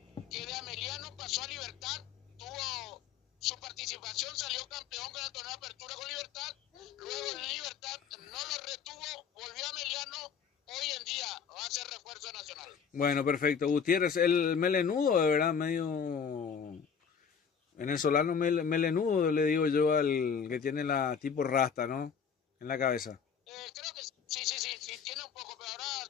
que de Ameliano pasó a Libertad, tuvo su participación, salió campeón con el torneo de apertura con Libertad, luego en Libertad no lo retuvo, volvió a Ameliano, hoy en día va a ser refuerzo nacional. Bueno, perfecto. Gutiérrez, el melenudo, de verdad, medio venezolano melenudo, le digo yo al que tiene la tipo rasta, ¿no? En la cabeza. Creo que sí, tiene un poco, pero ahora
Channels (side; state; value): right; quieter; 6.7 dB